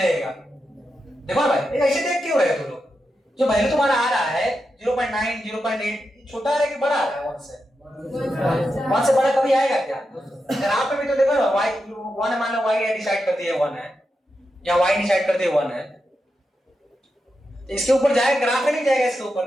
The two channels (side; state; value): both; normal; correlation 0.87